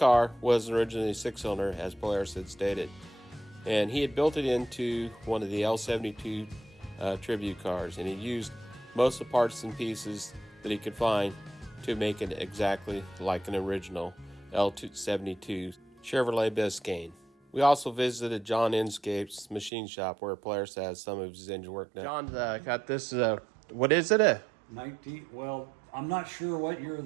was originally 6-cylinder, as Polaris had stated, and he had built it into one of the L72 tribute cars, and he used most of the parts and pieces that he could find to make it exactly like an original L72 Chevrolet Biscane. We also visited John Inscape's machine shop where Polaris has some of his engine work done. John's got this, what is it? 19, well, I'm not sure what year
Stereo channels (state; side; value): drops out; left; at 19.7 s